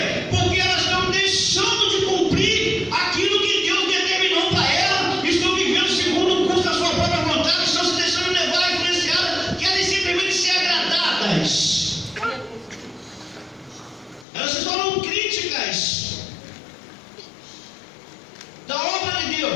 Porque elas estão deixando de cumprir aquilo que Deus determinou para elas, estão vivendo segundo o curso da sua própria vontade, estão se deixando levar, influenciadas, querem simplesmente ser agradadas. Elas se tornam críticas da obra de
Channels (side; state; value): right; drops out; at 14.2 s